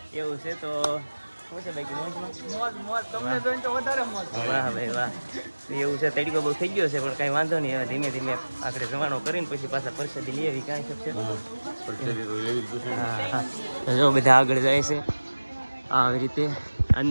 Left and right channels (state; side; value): inverted; both; correlation -1.00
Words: એવું છે. તો શું છે બાકી વાહ ભાઈ વાહ એવું છે. તડકો બહુ થઈ ગયો છે પણ કાંઈ વાંધો નહીં. હવે ધીમે ધીમે આપણે જવાનો કરીને પછી પાછા પરસાદી લઈ આવી. કાંઈ શકશે હા જો બધા આગળ જાય છે આવી રીતે